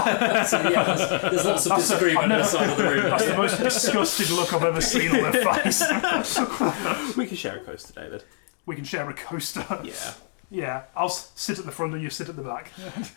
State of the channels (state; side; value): silent; right; digital silence